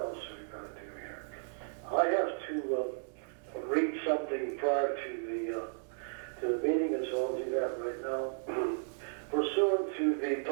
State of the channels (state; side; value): silent; left; digital silence